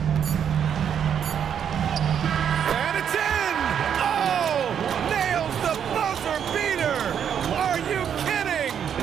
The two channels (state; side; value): quieter; left; 8.4 dB